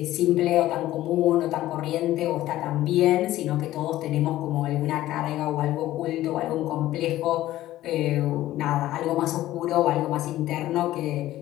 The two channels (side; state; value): right; quieter; 14.8 dB